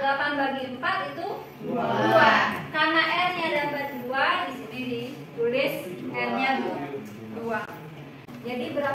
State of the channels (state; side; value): identical; both; correlation 1.00